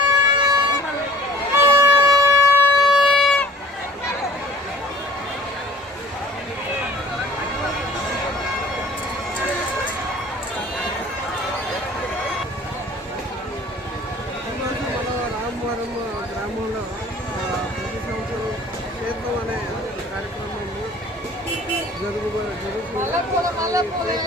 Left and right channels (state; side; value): normal; both; correlation 0.48